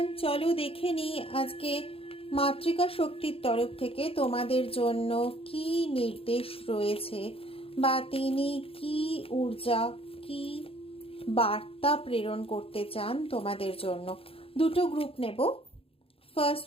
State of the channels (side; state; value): right; late; 0.27 ms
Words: চলো দেখে নিই আজকে মাতৃকা শক্তির তরফ থেকে তোমাদের জন্য কি নির্দেশ রয়েছে বা তিনি কি ঊর্জা কি বার্তা প্রেরণ করতে চান তোমাদের জন্য। দুটো গ্রুপ নেব। ফার্স্ট